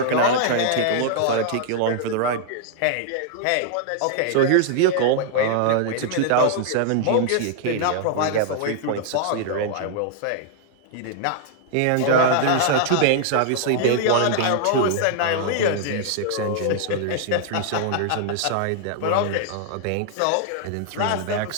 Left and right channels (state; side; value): different; both; correlation -0.01